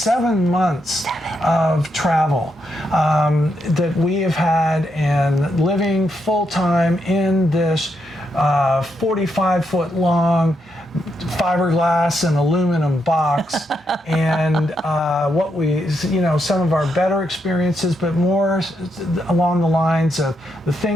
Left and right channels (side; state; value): both; normal; correlation 0.80